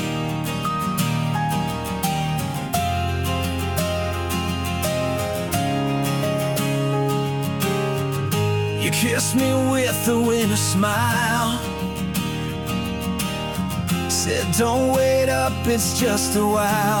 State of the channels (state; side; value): noise; right; hum, 25 dB below the sound